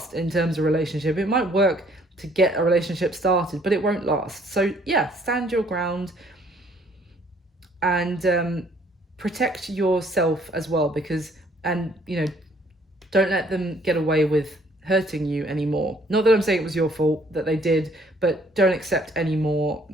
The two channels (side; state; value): both; normal; correlation 0.62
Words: in terms of relationship. It might work to get a relationship started, but it won't last. So yeah, stand your ground and protect yourself as well, because, and you know, don't let them get away with hurting you anymore. Not that I'm saying it was your fault that they did, but don't accept any more